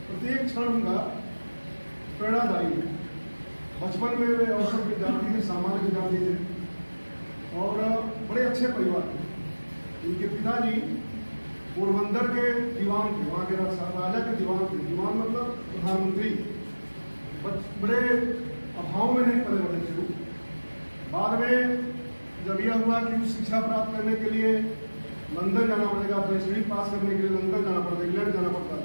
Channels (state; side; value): inverted; both; correlation -1.00